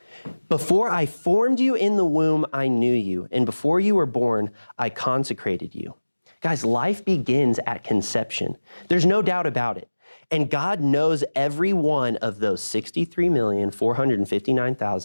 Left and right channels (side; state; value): both; inverted; correlation -1.00